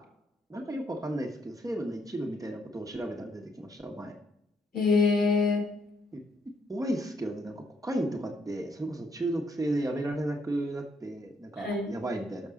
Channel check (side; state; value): both; normal; correlation 0.73